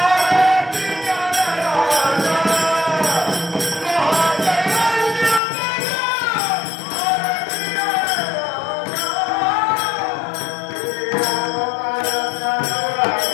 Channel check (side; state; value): right; drops out; at 5.4 s